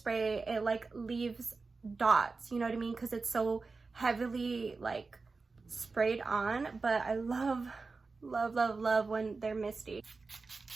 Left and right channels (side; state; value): left; quieter; 4.1 dB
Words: it like leaves dots, you know what I mean? Because it's so heavily like sprayed on, but I love when they're misty.